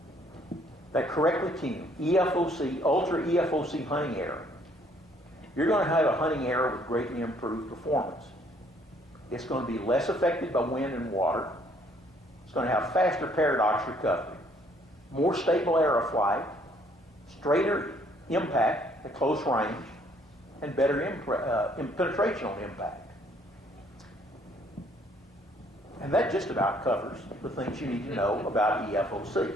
that correctly tuned EFOC, ultra EFOC hunting error, you're going to have a hunting error with greatly improved performance. It's going to be less affected by wind and water. It's going to have faster paradox recovery, more stable aeroflight, straighter impact at close range, and better penetration on impact. And that just about covers the things you need to know about EFOC.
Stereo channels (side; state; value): both; normal; correlation 0.64